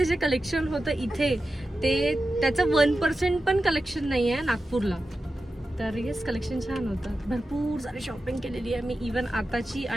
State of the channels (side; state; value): both; normal; correlation 0.92